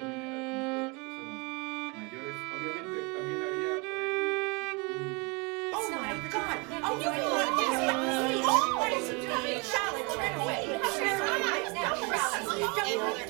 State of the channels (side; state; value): left; quieter; 29.9 dB